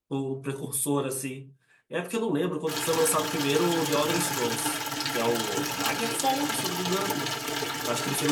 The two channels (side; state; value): both; identical; correlation 1.00